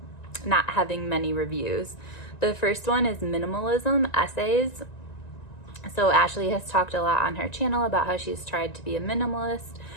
having many reviews. The first one is Minimalism Essays. So Ashley has talked a lot on her channel about how she's tried to be a minimalist,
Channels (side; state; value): right; late; 1.9 ms